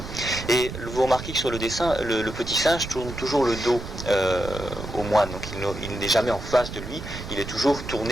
Et vous remarquez que sur le dessin, le petit singe tourne toujours le dos au moine, donc il n'est jamais en face de lui, il est toujours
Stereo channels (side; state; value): right; noise; rumble, 9 dB below the sound